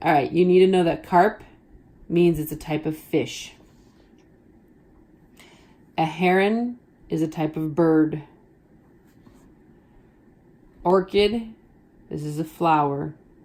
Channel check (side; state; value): both; identical; correlation 1.00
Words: All right, you need to know that carp means it's a type of fish. A heron is a type of bird. Orchid, this is a flower,